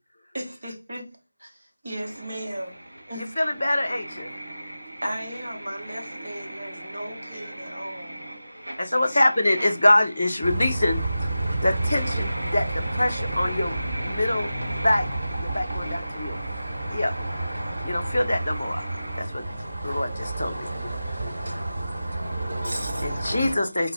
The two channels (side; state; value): both; inverted; correlation -0.94